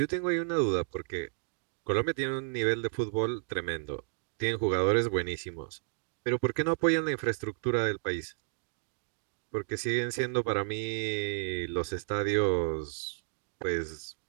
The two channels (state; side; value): silent; left; digital silence